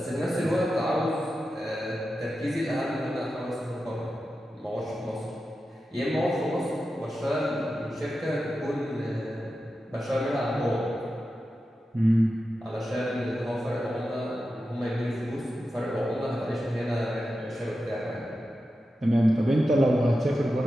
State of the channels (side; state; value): both; normal; correlation 0.91